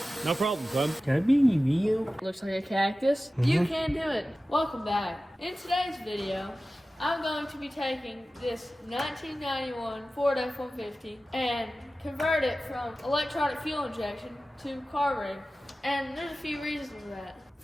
No problem, son. Can I be in your video? Looks like a cactus. You can do it. Welcome back. In today's video, I'm going to be taking this 1991 Ford F150 and convert it from electronic fuel injection to carburetor. And there's a few reasons for that.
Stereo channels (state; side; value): normal; both; correlation 0.95